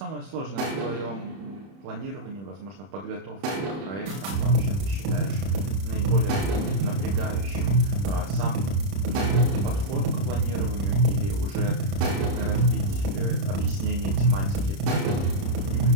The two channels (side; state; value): left; late; 31 ms